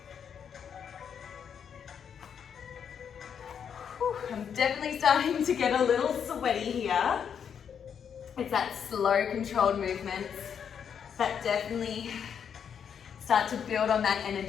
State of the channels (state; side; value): quieter; right; 7.7 dB